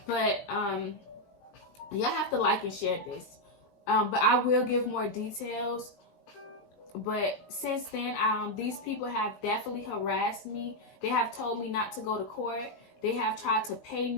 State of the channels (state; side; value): late; right; 20 ms